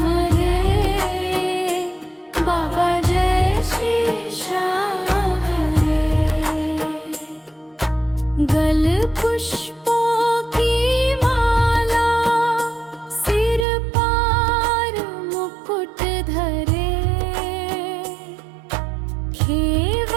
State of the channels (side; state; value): left; drops out; at 13.7 s